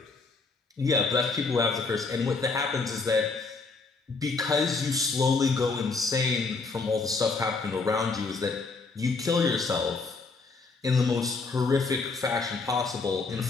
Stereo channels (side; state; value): right; quieter; 4.1 dB